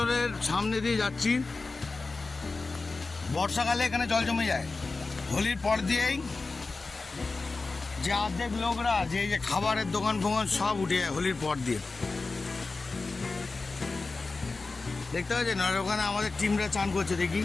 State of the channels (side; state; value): right; quieter; 3.8 dB